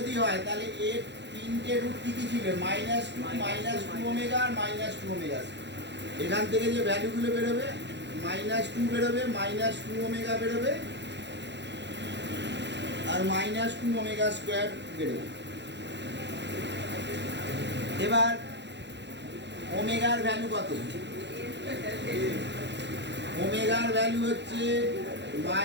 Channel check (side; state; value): left; late; 0.51 ms